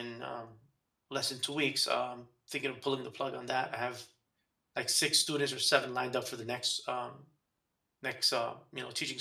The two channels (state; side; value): identical; both; correlation 1.00